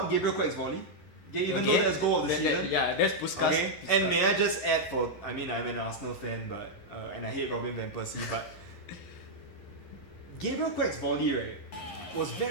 Gabriel Quack's volley. Even though that's goal of the season. That's Puskas. Okay, and may I just add I'm an Arsenal fan, but and I hate Robin van Persie, but Gabriel Quack's volley, right, was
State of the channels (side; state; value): right; late; 11 ms